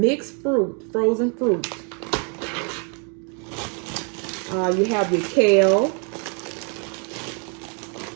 fruit, frozen fruit. You have your kale.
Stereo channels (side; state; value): left; quieter; 38.5 dB